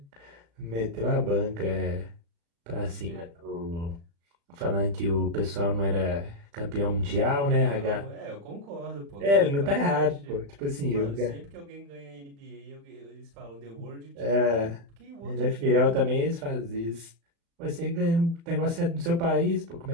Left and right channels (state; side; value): late; left; 35 ms